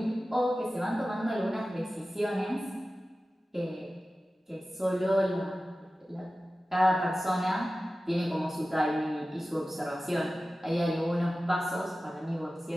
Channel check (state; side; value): normal; both; correlation 0.95